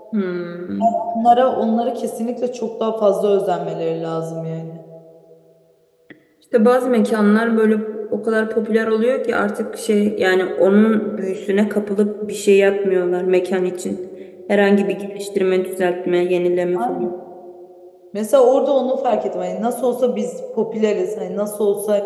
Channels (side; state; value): both; identical; correlation 1.00